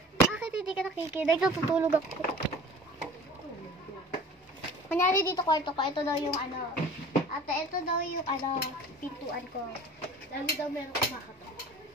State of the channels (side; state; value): both; normal; correlation 0.43